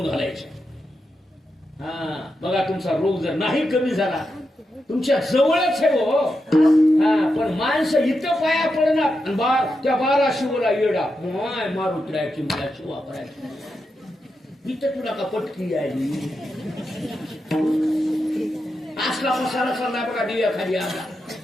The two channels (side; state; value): both; normal; correlation 0.87